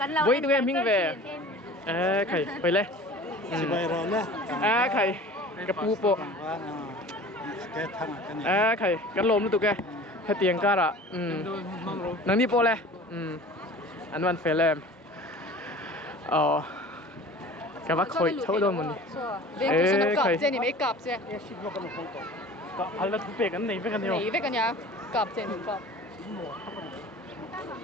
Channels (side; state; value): both; normal; correlation 0.42